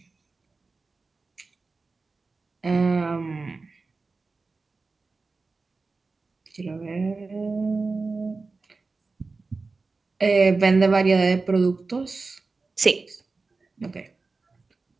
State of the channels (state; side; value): quieter; left; 3.9 dB